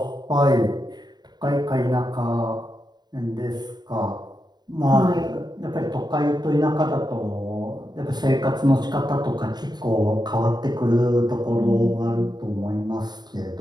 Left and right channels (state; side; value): late; left; 0.20 ms